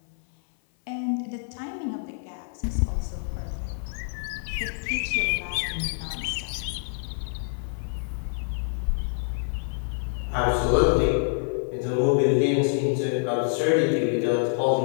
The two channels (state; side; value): silent; right; 57 dB below the other